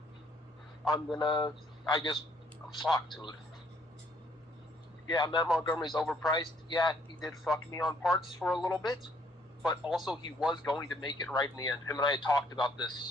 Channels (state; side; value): normal; both; correlation 0.66